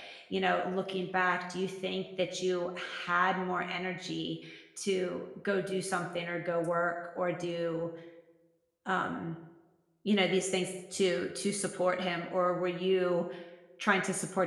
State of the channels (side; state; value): both; identical; correlation 1.00